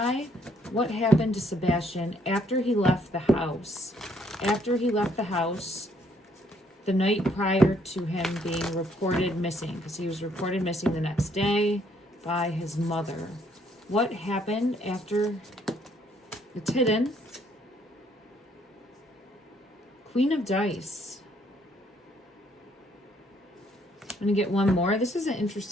what happened to Sebastian after he left the house? After he left the house the night prior to him being reported missing, because he was reported missing the next day by his mother. What happened after? It's hidden. Queen of Dice. I'm going to get one more. This is an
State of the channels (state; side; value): normal; both; correlation 0.67